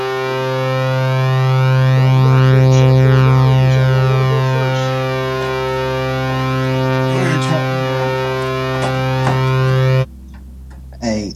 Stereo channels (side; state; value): both; identical; correlation 1.00